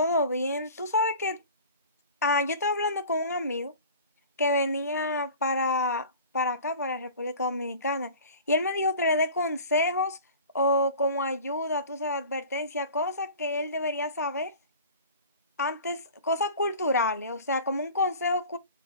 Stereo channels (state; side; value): inverted; both; correlation -0.40